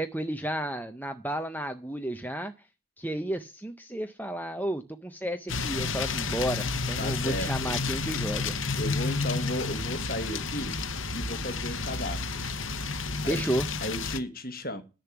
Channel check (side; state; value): both; normal; correlation 0.56